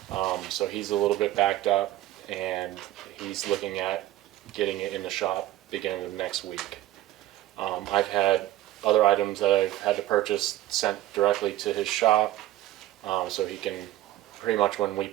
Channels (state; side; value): quieter; left; 14.8 dB